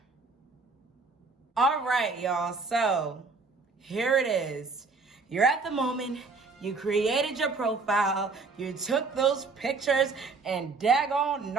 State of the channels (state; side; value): quieter; left; 4.2 dB